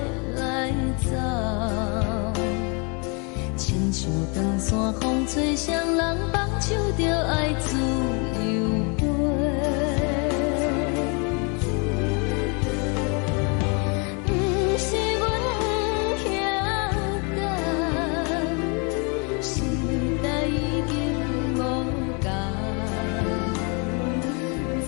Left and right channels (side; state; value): right; quieter; 34.0 dB